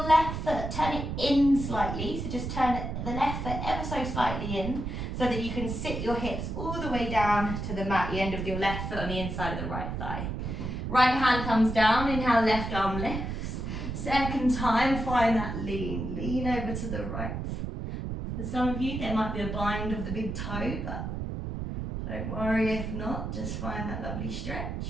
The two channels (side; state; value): right; noise; rumble, 4 dB below the sound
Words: left foot, turn it in slightly. So just turn the left foot ever so slightly in so that you can sit your hips all the way down to the mat, the end of your left foot on the inside of the right thigh. Right hand comes down, inhale, left arm lifts. Second time, find that lean. Lean over to the right. For some of you, there might be a bind of the big toe, but don't worry if not, just find that lovely